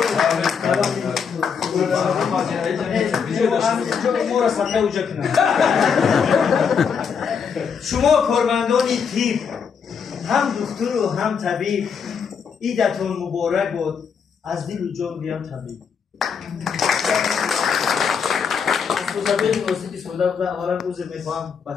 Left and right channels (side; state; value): right; quieter; 6.5 dB